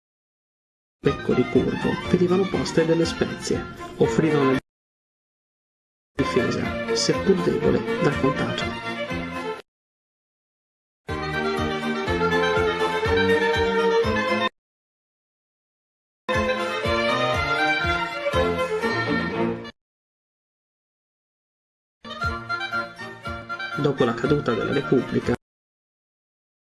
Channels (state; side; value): identical; both; correlation 1.00